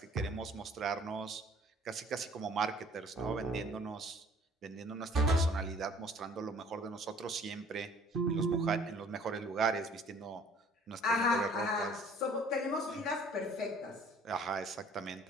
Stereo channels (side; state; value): both; normal; correlation 0.54